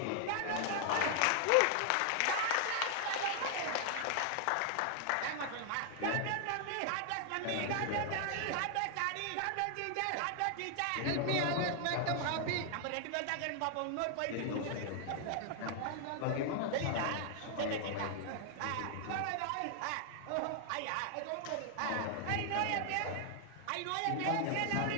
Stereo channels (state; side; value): different; both; correlation 0.00